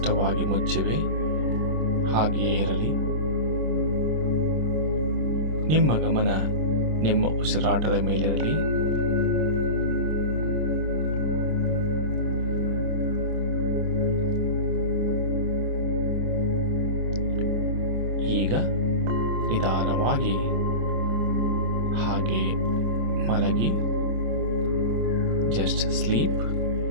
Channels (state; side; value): late; left; 26 ms